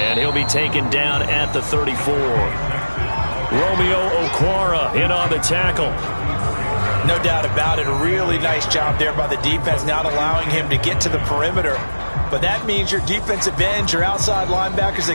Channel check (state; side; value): inverted; both; correlation -1.00